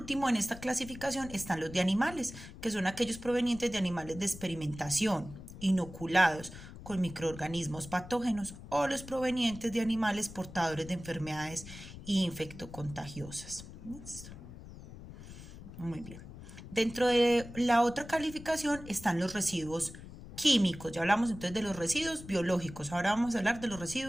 en esta clasificación están los de animales, que son aquellos provenientes de animales de experimentación, inoculados con microorganismos patógenos, o los provenientes de animales portadores de enfermedades infectocontagiosas. ¿Listo? Muy bien. Dentro de la otra calificación están los residuos químicos. Ya hablamos entonces de los residuos biológicos. Ahora vamos a hablar de los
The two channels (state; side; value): noise; left; rumble, 14 dB below the sound